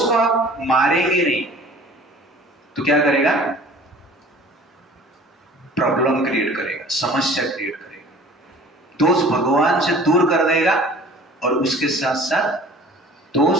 को आप मारेंगे नहीं तो क्या करेगा? प्रॉब्लम क्रिएट करेगा, समस्या क्रिएट करेगा। दोष भगवान से दूर कर देगा और उसके साथ साथ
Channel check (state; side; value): normal; both; correlation 0.47